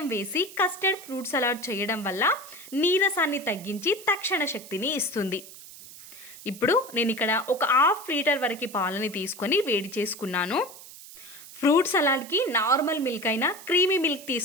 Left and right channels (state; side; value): noise; right; hiss, 17 dB below the sound